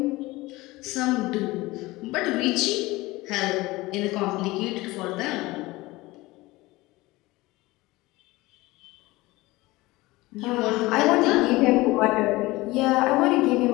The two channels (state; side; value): quieter; right; 20.4 dB